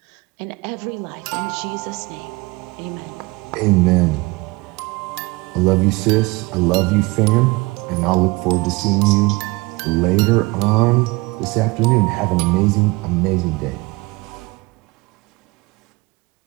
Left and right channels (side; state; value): left; quieter; 24.2 dB